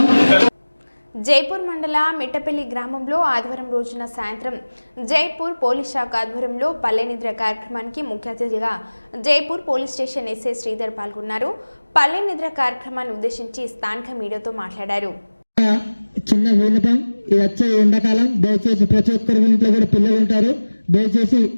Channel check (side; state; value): both; inverted; correlation -1.00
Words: జైపూర్ మండల మిట్టపల్లి గ్రామంలో ఆదివారం రోజున సాయంత్రం జైపూర్ పోలీస్ శాఖ ఆధ్వర్యంలో పల్లె నిద్ర కార్యక్రమానికి ముఖ్య అతిథిగా Jaipur police station SI Sridhar పాల్గొన్నారు. పల్లె నిద్ర కార్యక్రమాన్ని ఉద్దేశించి స్థానిక మీడియాతో మాట్లాడారు. చిన్న విన్నపం, ఇది వచ్చే ఎండాకాలం, దయచేసి ప్రతి ఒక్కరి ఇంట్లో కూడా పిల్లలు ఉంటారు. దయచేసి